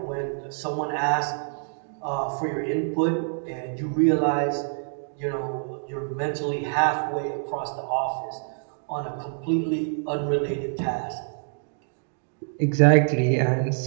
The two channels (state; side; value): silent; left; digital silence